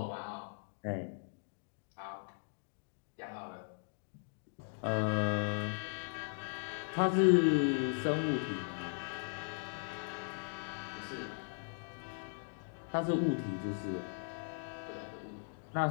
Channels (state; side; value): silent; right; digital silence